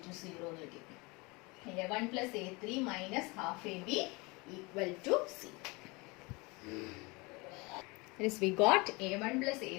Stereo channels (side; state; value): right; quieter; 26.2 dB